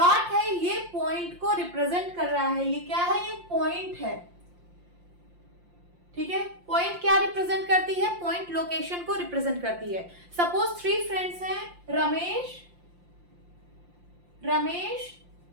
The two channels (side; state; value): left; late; 5.7 ms